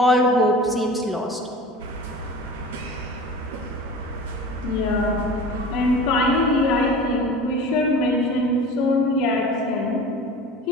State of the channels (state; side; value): normal; both; correlation 0.37